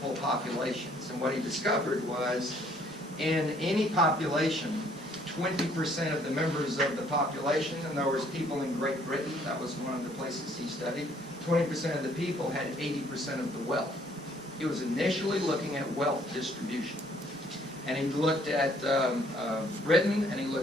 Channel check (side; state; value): both; normal; correlation 0.62